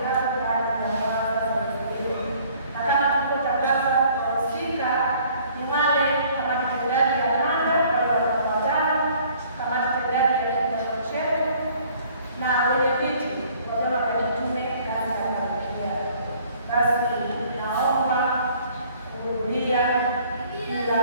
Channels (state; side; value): inverted; both; correlation -0.57